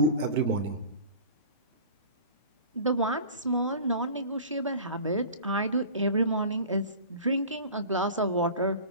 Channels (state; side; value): inverted; both; correlation -0.39